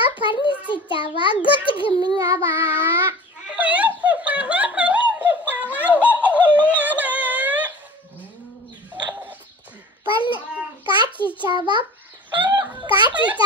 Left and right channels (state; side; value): normal; both; correlation 0.40